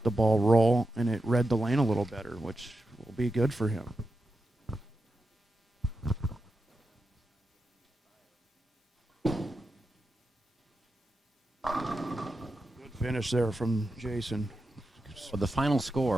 the ball roll, and it read the lane a little better, which will be good for him. Good finish there from Jason. Well, the final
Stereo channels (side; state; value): both; normal; correlation 0.88